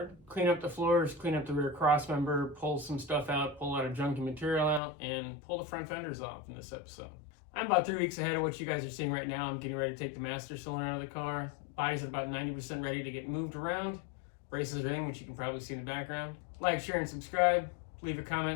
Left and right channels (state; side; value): drops out; right; at 4.8 s